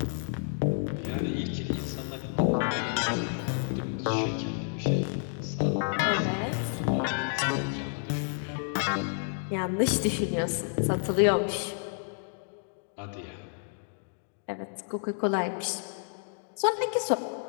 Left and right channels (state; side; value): silent; right; digital silence